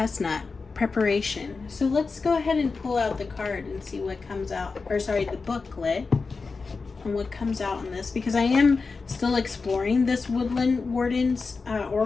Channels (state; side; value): quieter; right; 4.4 dB